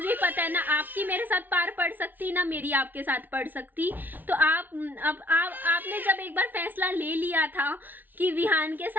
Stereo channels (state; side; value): late; left; 0.087 ms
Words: ही पता है ना आपकी मेरे साथ पार पड़ सकती, ना मेरी आपके साथ पड़ सकती। तो आपने जब एक बार फैसला ले लिया था कि विहान के